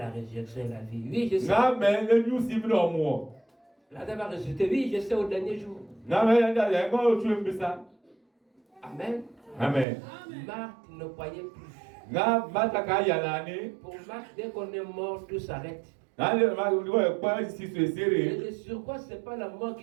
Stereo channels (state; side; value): drops out; left; at 9.9 s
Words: résurrection et la vie. Oui, je sais. Lazare va ressusciter. Oui, je sais au dernier jour. Amen. Marthe ne croyait plus. Pour Marthe, dès qu'on est mort, tout s'arrête. Et sur quoi c'est pas la mort